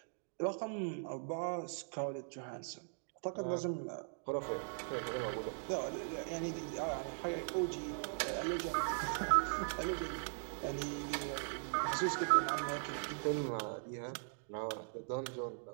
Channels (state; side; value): silent; left; digital silence